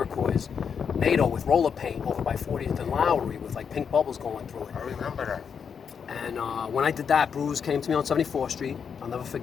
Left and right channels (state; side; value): quieter; right; 6.8 dB